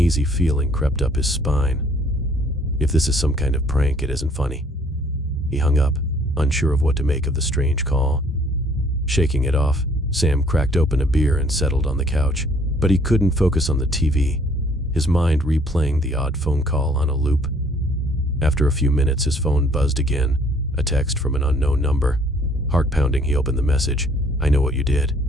feeling crept up his spine. If this is some kind of prank, it isn't funny. He hung up, unsure of what to make of the strange call. Shaking it off, Sam cracked open a beer and settled on the couch, but he couldn't focus on the TV, his mind replaying the odd phone call on a loop. After a few minutes, his phone buzzed again, a text from an unknown number. Heart pounding, he opened the message. I know what you did.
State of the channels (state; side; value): normal; both; correlation 0.60